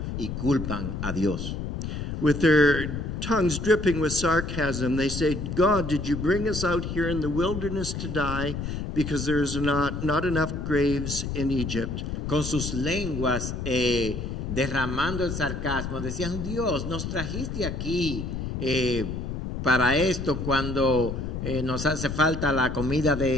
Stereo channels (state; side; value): noise; left; rumble, 4 dB below the sound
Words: y culpan a Dios. With their tongues dripping with sarcasm, they say, God, did you bring us out here in the wilderness to die because there's not enough graves in Egypt? Con sus lenguas derramando el sarcasmo, decían, Dios, nos trajiste aquí para esto cuando nos hace falta la comida